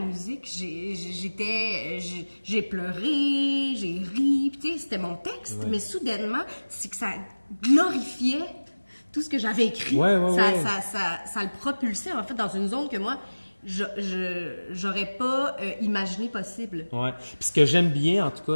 musique, j'ai pleuré, j'ai ri, puis tu sais, c'était mon texte, mais soudainement, c'est que ça glorifiait tout ce que j'avais écrit. Ça le propulsait, en fait, dans une zone que moi, j'aurais pas imaginé possible. Oui. Puis ce que j'aime bien, en tout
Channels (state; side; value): inverted; both; correlation -1.00